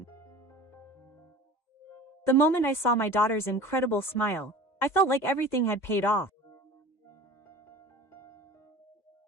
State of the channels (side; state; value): right; late; 2.2 ms